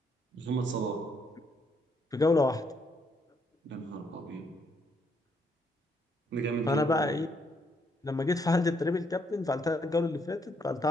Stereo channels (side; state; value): both; normal; correlation 0.72